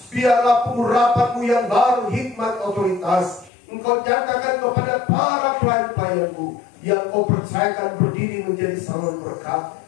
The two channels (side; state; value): right; drops out; at 3.5 s